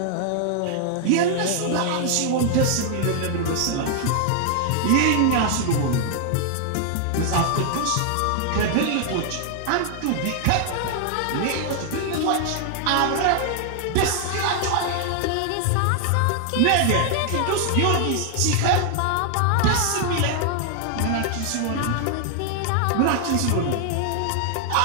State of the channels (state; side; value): different; both; correlation 0.00